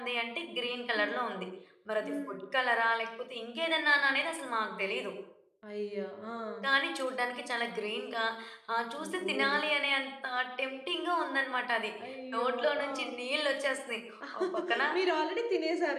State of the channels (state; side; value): identical; both; correlation 1.00